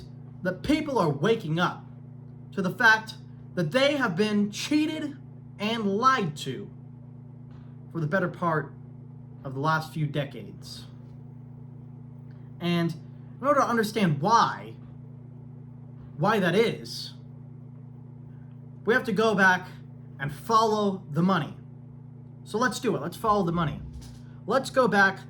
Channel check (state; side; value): identical; both; correlation 1.00